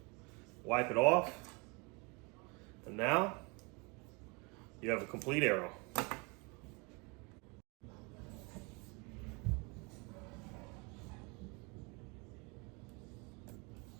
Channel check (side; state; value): left; quieter; 29.7 dB